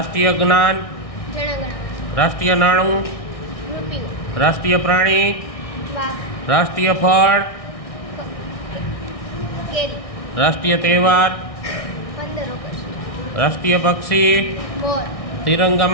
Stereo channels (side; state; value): right; late; 1.6 ms